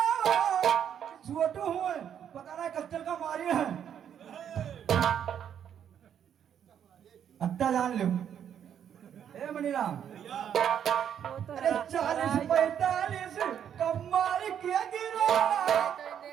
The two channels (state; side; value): quieter; left; 9.0 dB